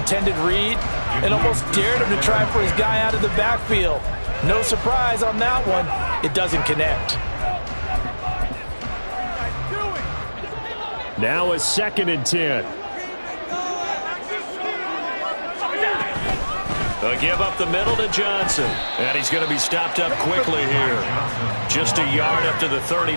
read and almost dared him to try for his guy out of the backfield. No surprise on that one. It doesn't connect. Now a 2nd and 10. A give up the middle to Johnson. And he's going to be stopped up quickly here. Just a yard up to the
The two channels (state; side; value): inverted; both; correlation -1.00